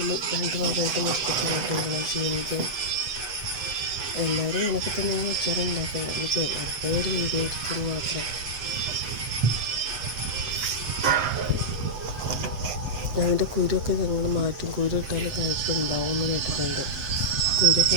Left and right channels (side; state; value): left; late; 8.0 ms